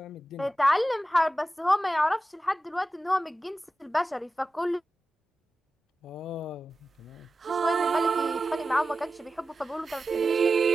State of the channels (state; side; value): normal; both; correlation 0.93